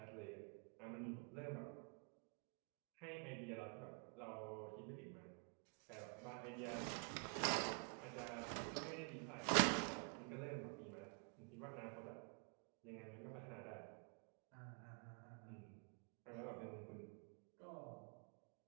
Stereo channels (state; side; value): quieter; left; 39.2 dB